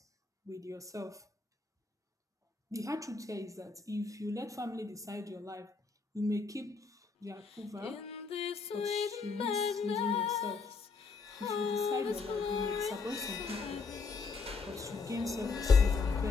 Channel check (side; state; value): right; quieter; 4.6 dB